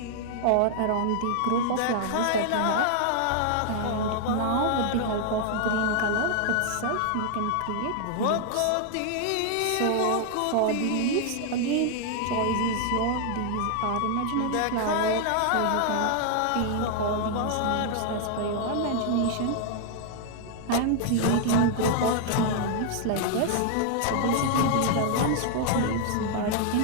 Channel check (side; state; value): both; different; correlation 0.00